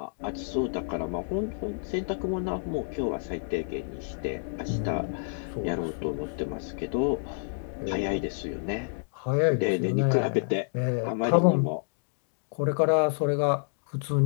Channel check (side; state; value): right; silent; digital silence